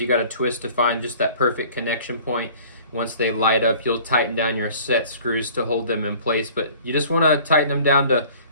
you got to twist to find just that perfect connection point. Once they light up, you'll tighten down your set screws to hold them in place, but you just want to tighten them down to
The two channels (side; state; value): both; inverted; correlation -0.48